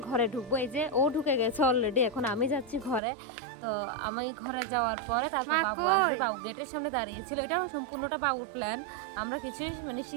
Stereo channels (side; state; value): left; drops out; at 3.0 s